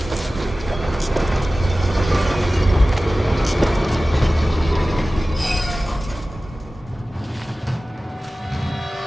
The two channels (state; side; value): normal; both; correlation 0.96